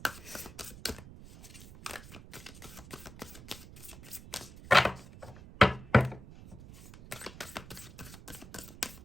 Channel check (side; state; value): right; noise; rumble, 16 dB below the sound